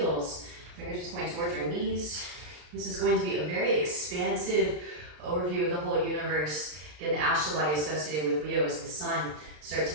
fingers just point towards your knees. This is going to be a very expansive overview of the whole universe. Again, the astral body associated with Leo is the sun. Start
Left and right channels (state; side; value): late; left; 33 ms